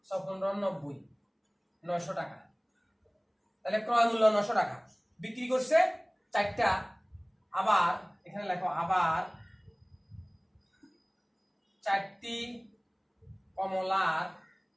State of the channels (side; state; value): both; identical; correlation 1.00